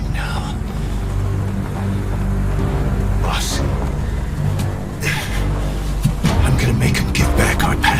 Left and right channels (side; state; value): both; identical; correlation 1.00